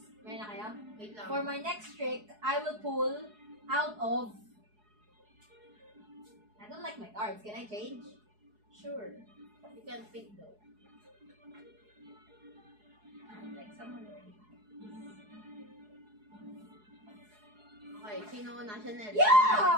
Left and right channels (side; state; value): left; late; 4.7 ms